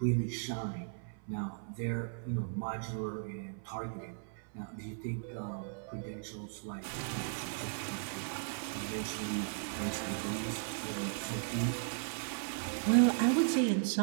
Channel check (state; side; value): silent; left; 53 dB below the other